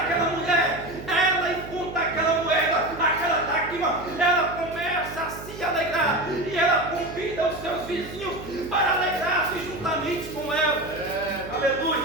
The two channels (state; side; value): noise; right; hum, 13 dB below the sound